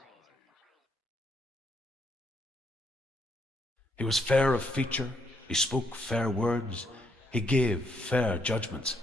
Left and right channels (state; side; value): normal; both; correlation 0.74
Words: He was fair of feature, he spoke fair words, he gave fair judgments.